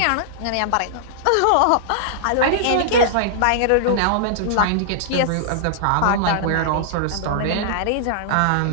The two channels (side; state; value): both; different; correlation -0.01